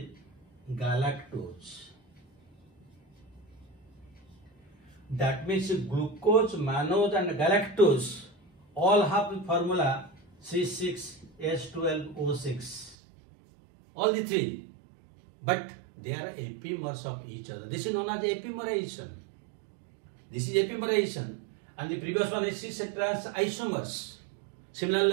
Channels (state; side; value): drops out; left; at 13.0 s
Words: galactose. That means glucose, mannose and galactose all have the formula C6H12O6. All the three. But they are epimers of each other. This is known as epimerization. This is epimerization. And the previous one is cis trans isomers. Similarly,